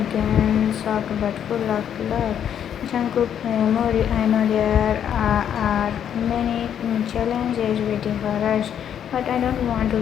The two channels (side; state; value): right; quieter; 9.2 dB